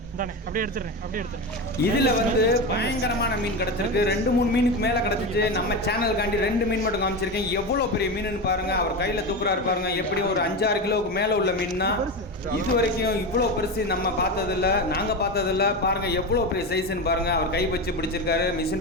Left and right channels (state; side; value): normal; both; correlation 0.20